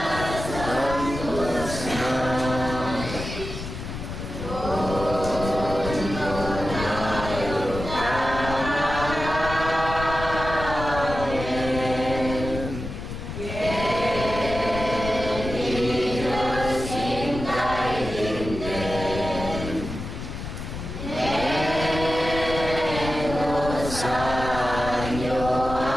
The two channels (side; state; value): left; noise; rumble, 7 dB below the sound